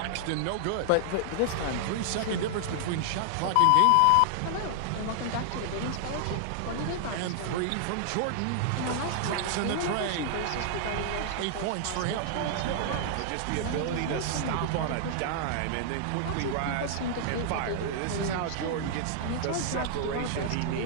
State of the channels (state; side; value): different; both; correlation -0.01